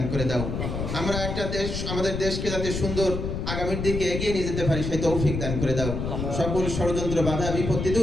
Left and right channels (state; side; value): noise; left; rumble, 3 dB below the sound